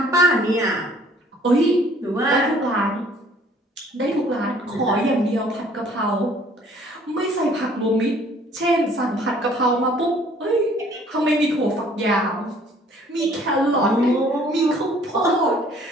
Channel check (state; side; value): normal; both; correlation 0.57